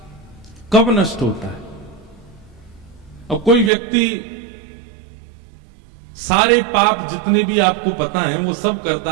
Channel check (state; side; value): drops out; left; at 3.7 s